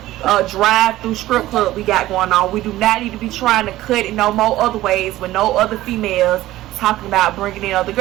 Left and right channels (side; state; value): left; quieter; 15.7 dB